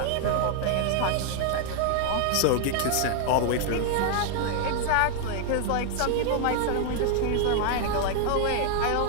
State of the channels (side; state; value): both; different; correlation 0.00